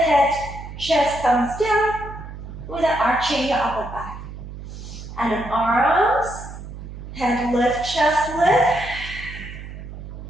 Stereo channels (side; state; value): right; noise; hum, 11 dB below the sound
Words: chest comes down without arching your upper back. And then arms, head lift, chest lift.